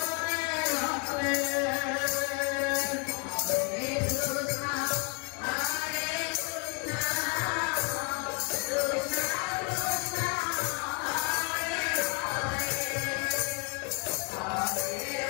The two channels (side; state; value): right; quieter; 32.8 dB